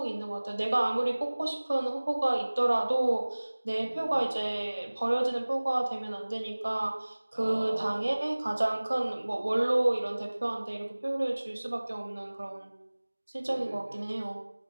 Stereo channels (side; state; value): both; inverted; correlation -1.00